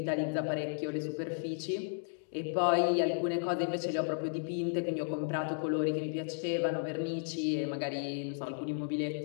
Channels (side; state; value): right; silent; digital silence